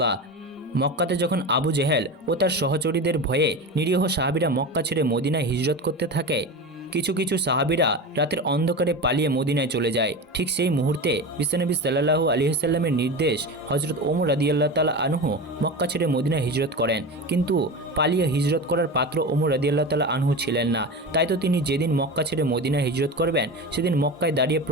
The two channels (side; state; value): both; normal; correlation 0.26